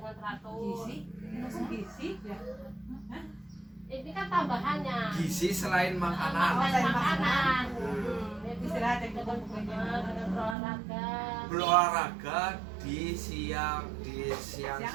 teratur. Gizi ya. Ini kan tambahannya. Gizi selain makanan. Makanan. Istirahat yang Dengan berolahraga. Berolahraga di siang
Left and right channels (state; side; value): drops out; left; at 10.6 s